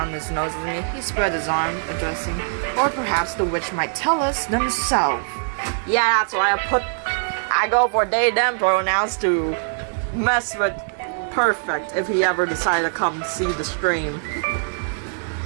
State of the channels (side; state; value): left; silent; 60 dB below the other